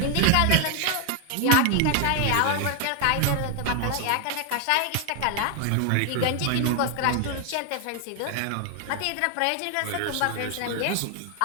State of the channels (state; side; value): different; both; correlation 0.00